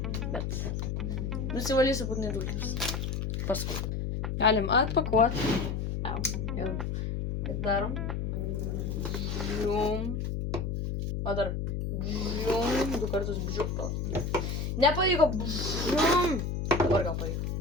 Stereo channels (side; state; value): left; noise; hum, 2 dB below the sound